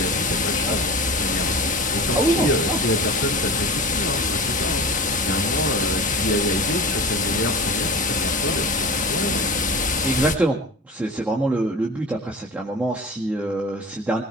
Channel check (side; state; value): both; normal; correlation 0.34